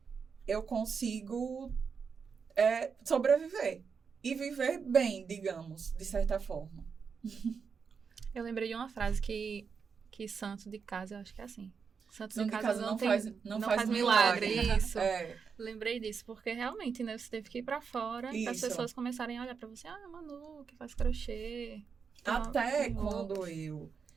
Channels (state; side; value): quieter; left; 5.9 dB